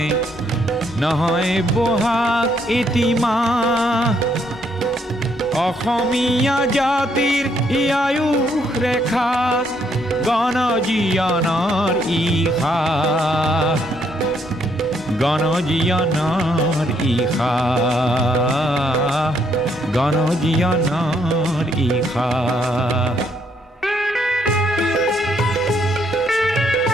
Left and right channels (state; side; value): normal; both; correlation 0.72